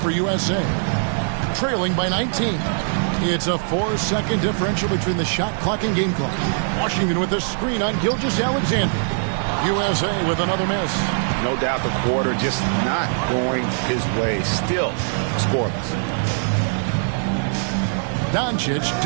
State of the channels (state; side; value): silent; left; digital silence